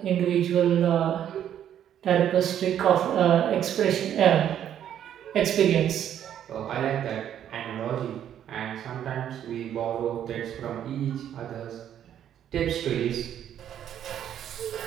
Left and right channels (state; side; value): quieter; left; 10.1 dB